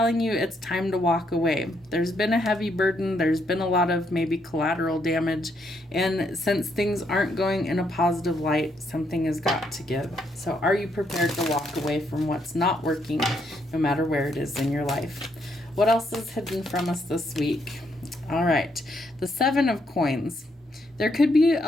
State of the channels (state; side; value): normal; both; correlation 0.75